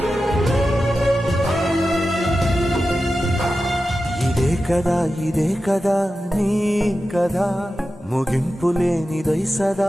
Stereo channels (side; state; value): both; normal; correlation 0.92